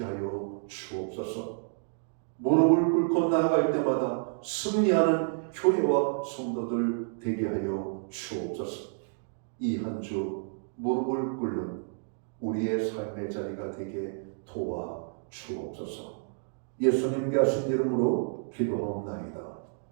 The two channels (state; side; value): silent; left; digital silence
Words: 주옵소서. 무릎을 꿇고 나아갈 때마다 승리하는 교회와 성도들 되게 하여 주옵소서. 이 한 주 무릎을 꿇는 우리의 삶의 자리가 되게 도와 주옵소서. 예수님께 하신 이름으로 기도하옵나이다.